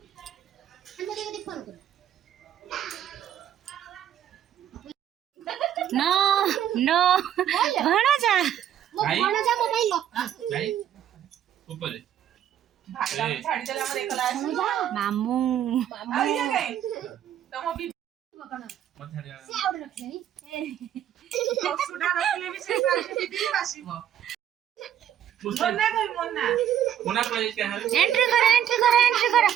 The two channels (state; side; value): quieter; left; 10.5 dB